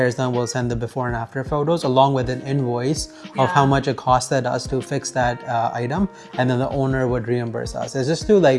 is done, we'll send the before and after photos along with an invoice of how much it costed us to fix that item, and then the owner would reimburse us. It's just to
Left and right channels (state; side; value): identical; both; correlation 1.00